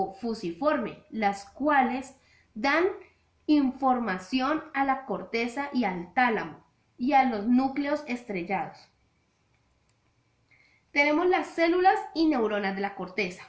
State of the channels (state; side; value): identical; both; correlation 1.00